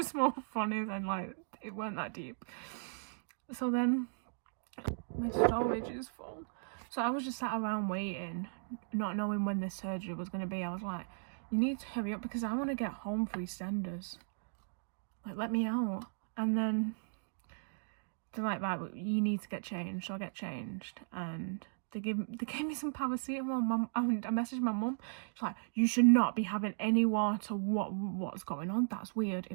more funny than, like, it weren't that deep. So then, my storage is full. So I was just sat around waiting, not knowing when this surgery was going to be. I was like, you need to hurry up because I want to get home for EastEnders. Like, let me out. And then they're like, right, you need to get changed. So I get changed, and they gave me some paracetamol. I messaged my mum. She's like, you should not be having any water. What's going on? That's weird. It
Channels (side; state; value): left; silent; digital silence